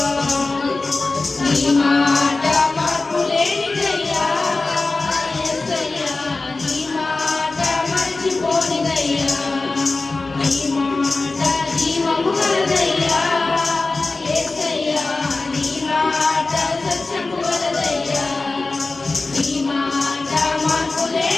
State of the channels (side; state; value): right; quieter; 3.5 dB